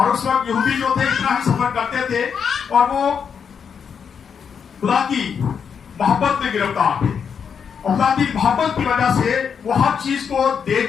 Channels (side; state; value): right; quieter; 6.9 dB